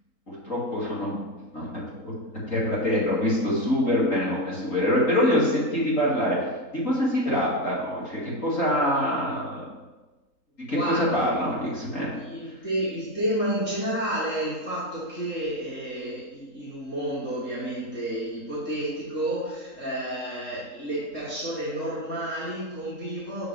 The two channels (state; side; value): late; right; 3.8 ms